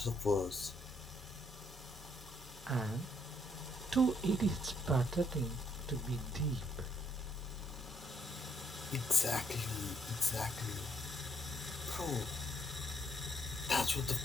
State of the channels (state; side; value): normal; both; correlation 0.71